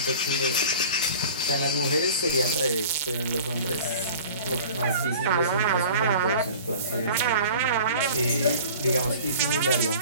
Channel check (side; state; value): both; inverted; correlation -0.43